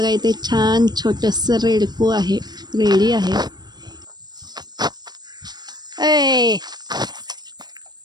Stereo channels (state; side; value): late; left; 0.20 ms